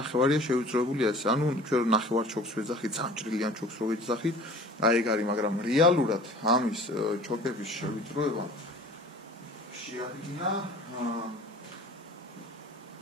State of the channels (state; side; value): normal; both; correlation 0.45